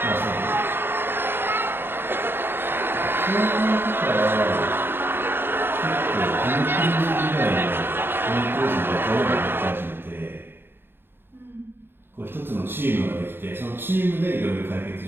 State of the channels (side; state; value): left; late; 0.10 ms